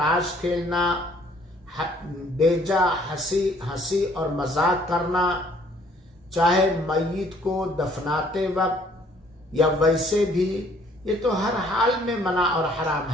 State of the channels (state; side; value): normal; both; correlation 0.60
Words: کھیلنا، بیجا ہنسی اور مذاق کرنا، چاہے میت کو دفناتے وقت یا ویسے بھی، یہ تو ہر حال میں منع اور حرام